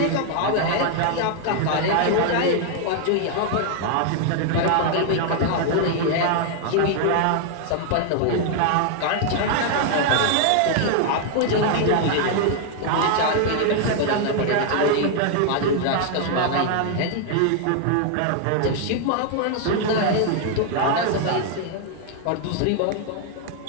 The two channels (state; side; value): different; both; correlation 0.00